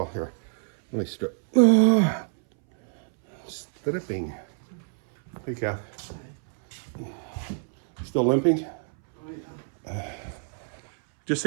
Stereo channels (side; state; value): left; silent; 60 dB below the other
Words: here, let me strip. Stripping. Hey, Kath. Still limping? Oh, yeah. Just